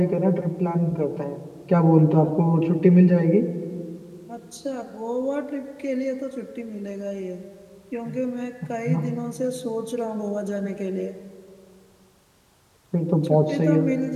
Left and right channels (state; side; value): identical; both; correlation 1.00